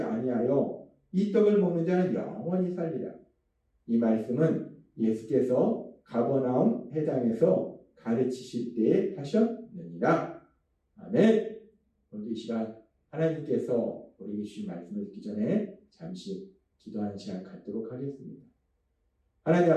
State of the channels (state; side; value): identical; both; correlation 1.00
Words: 아니하여 이 떡을 먹는 자는 영원히 살리라. 이 말씀은 예수께서 가버나움 회당에서 가르치실 때에 하셨느니라. 아멘. 오늘 이 시간 하나님께서 우리에게 주신 말씀을 듣기 전에 잠시 기도하는 시간 갖도록 하겠습니다. 하나님